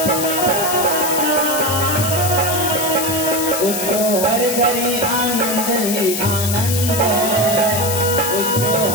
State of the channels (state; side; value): noise; left; hiss, 3 dB below the sound